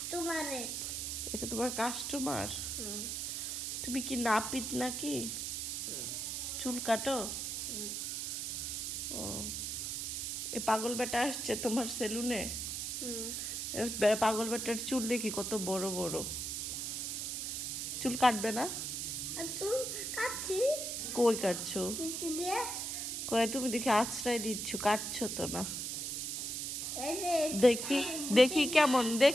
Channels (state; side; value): noise; right; hiss, 3 dB below the sound